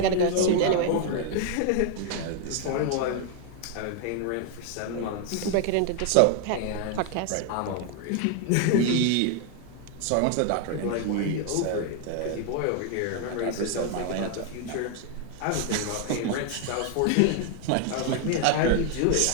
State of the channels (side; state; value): both; different; correlation 0.00